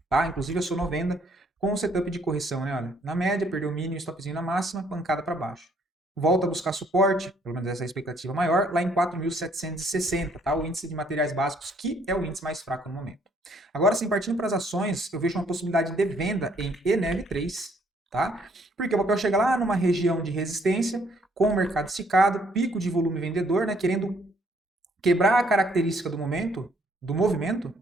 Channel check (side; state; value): both; normal; correlation 0.65